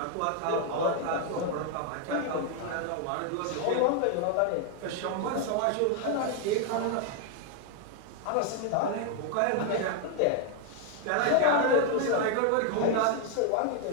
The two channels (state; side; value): different; both; correlation 0.00